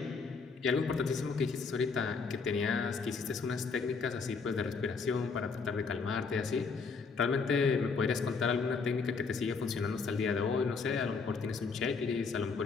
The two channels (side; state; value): right; quieter; 4.9 dB